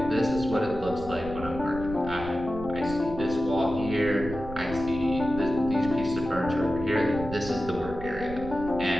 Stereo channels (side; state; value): right; noise; rumble, 12 dB below the sound